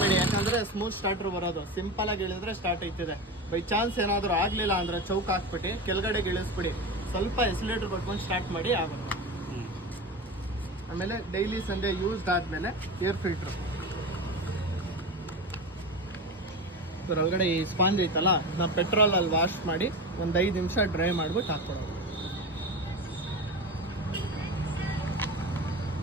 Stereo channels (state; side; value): normal; both; correlation 0.25